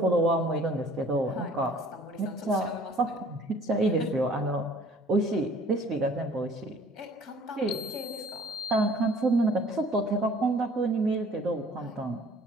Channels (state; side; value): normal; both; correlation 0.53